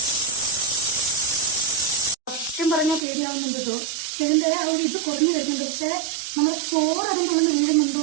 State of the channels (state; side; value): drops out; left; at 3.0 s